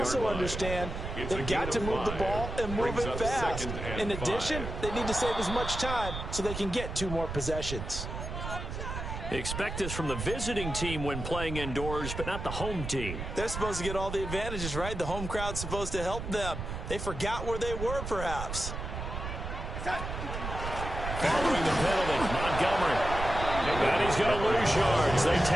understand they've got to move the ball and move it fast. In addition, they need to save as much time so they can get 2 more possessions. Expect this from the visiting team when playing indoors, but not the home team. They're supposed to get all the advantages, right? The home crowd's supposed to help them. They forgot where they were, perhaps. Following the penalty, Montgomery. And he's going to lose yards. They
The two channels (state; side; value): noise; right; rumble, 6 dB below the sound